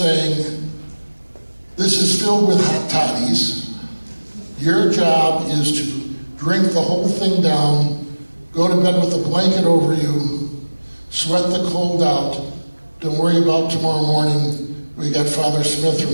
"This is filled with hot toddies. Your job is to drink the whole thing down, go to bed with a blanket over you, sweat the cold out. Don't worry about tomorrow morning. We got Father Smith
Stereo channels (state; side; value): inverted; both; correlation -1.00